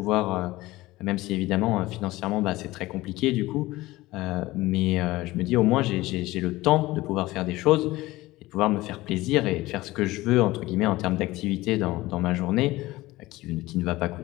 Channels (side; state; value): right; quieter; 18.7 dB